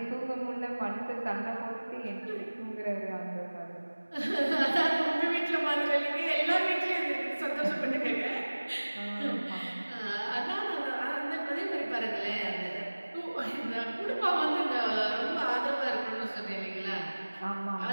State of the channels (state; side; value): inverted; both; correlation -1.00